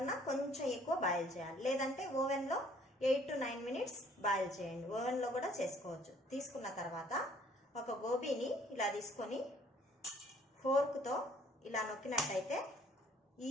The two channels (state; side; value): normal; both; correlation 0.59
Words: కొంచెం ఎక్కువ బాయిల్ చేయాలి. లేదంటే ఓవెన్లో 8 to 9 మినిట్స్ బాయిల్ చేయండి. ఓవెన్లో కూడా చేసుకోవచ్చు. తీసుకున్న తర్వాత ఒక గోబీని ఇలా తీసుకొని ఫోర్క్తో ఇలా నొక్కినట్టయితే